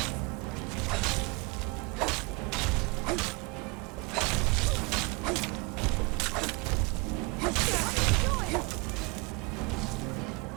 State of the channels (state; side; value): quieter; left; 28.1 dB